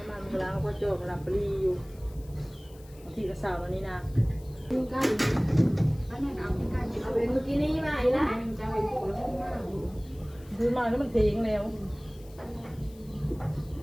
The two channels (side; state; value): left; noise; hiss, 25 dB below the sound